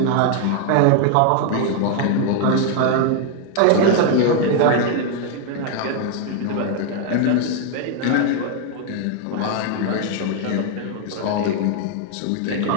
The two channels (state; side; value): different; both; correlation 0.00